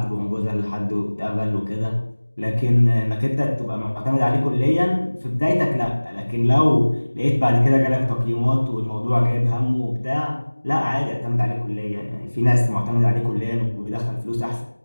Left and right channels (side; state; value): both; inverted; correlation -1.00